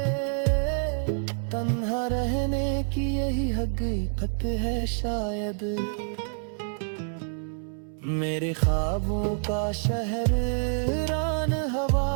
तन्हा रहने की, यही हकीकत है शायद। मेरे ख्वाबों का शहर रान हवा,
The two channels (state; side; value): silent; left; 58 dB below the other